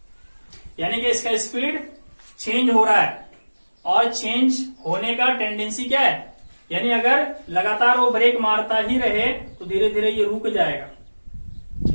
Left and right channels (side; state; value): both; inverted; correlation -1.00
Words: यानी कि इसका स्पीड चेंज हो रहा है, और चेंज होने का टेंडेंसी क्या है, यानी अगर लगातार वो ब्रेक मारता ही रहे तो धीरे धीरे ये रुक जाएगा।